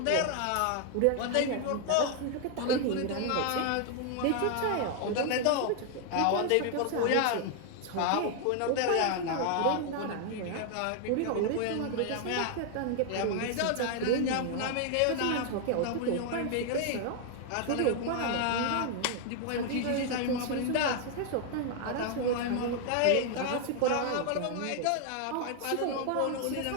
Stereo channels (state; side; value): different; both; correlation 0.00